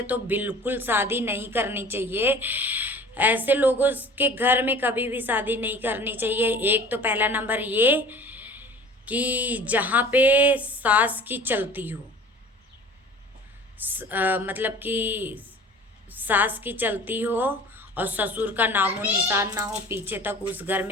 तो बिल्कुल शादी नहीं करनी चाहिए। ऐसे लोगों के घर में कभी भी शादी नहीं करनी चाहिए। एक तो पहला नंबर ये कि जहाँ पे सास की चलती हो, मतलब कि सास की चलती हो और ससुर का नामो निशान ना हो पीछे तक, उस घर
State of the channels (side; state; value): both; normal; correlation 0.44